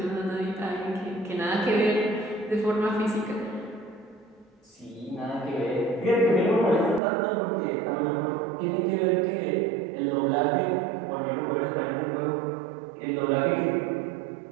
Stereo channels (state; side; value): drops out; left; at 7.0 s